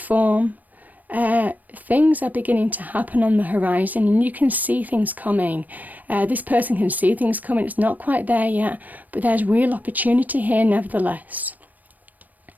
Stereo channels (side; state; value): left; late; 0.082 ms